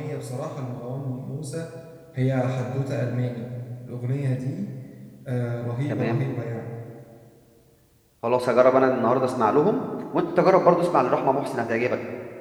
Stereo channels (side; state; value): both; identical; correlation 1.00